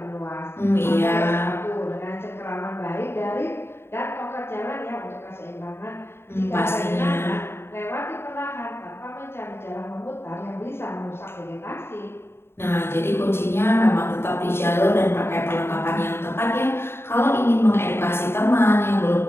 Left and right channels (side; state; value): right; late; 0.12 ms